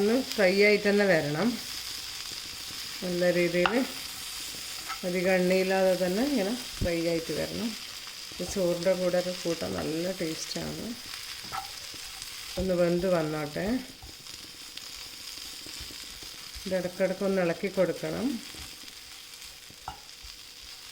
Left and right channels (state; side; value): identical; both; correlation 1.00